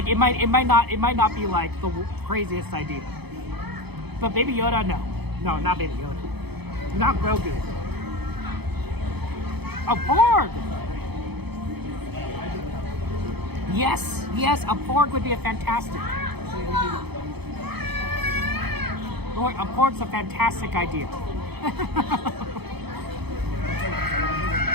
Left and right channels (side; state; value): left; late; 0.98 ms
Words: it might not be like the craziest idea. But Baby Yoda, no, not Baby Yoda, not Grogu. A Porg. Yes, a Porg would be a fantastic. A Porg's a fantastic idea.